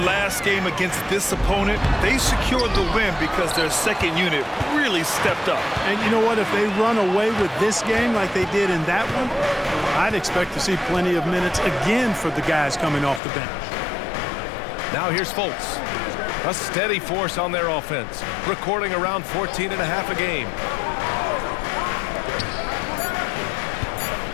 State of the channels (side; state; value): right; drops out; at 13.2 s